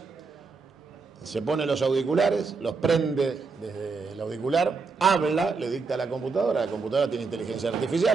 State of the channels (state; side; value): quieter; left; 4.6 dB